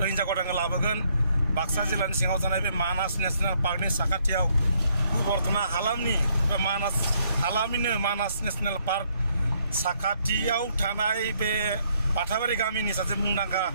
हिन्जाव गोदानखौ लाबोगोन बाक्सा जिल्लानि सिङाव थानाय बे मानास नेसनेल पार्कनि साखाथियाव बर्थना हालामनि बा मानास हालामनिनो मानास नेसनेल पार्क साखाथियाव थानाय बे बाथाबारि गामिनि सासे मुंदांखा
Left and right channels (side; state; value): both; inverted; correlation -0.70